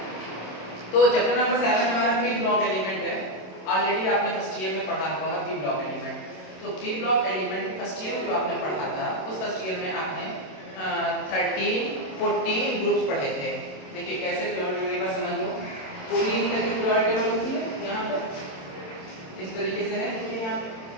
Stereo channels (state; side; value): late; right; 27 ms